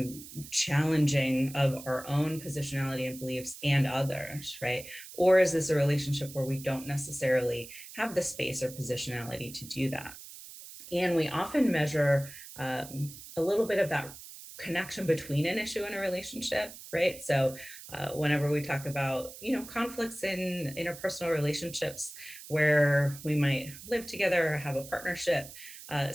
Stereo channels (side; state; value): right; noise; hiss, 15 dB below the sound